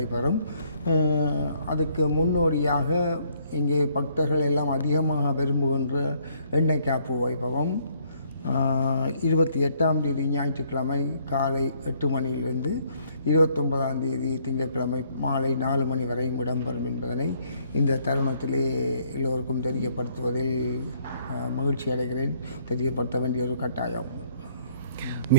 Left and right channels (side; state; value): both; inverted; correlation -0.66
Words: அதுக்கு முன்னோடியாக இங்கே பக்தர்கள் எல்லாம் அதிகமாக விரும்புகின்ற எண்ணெய் காப்பு வைபவம் 28ஆம் தேதி ஞாயிற்றுக்கிழமை காலை 8 மணியிலிருந்து 29ஆம் தேதி திங்கட்கிழமை மாலை 4 மணி வரையும் இடம்பெறும் என்பதனை இந்த தருணத்திலே எல்லோருக்கும் தெரியப்படுத்துவதில் மகிழ்ச்சி அடைகிறேன். தெரியப்படுத்த வேண்டிய ஒரு கட்டாயம்.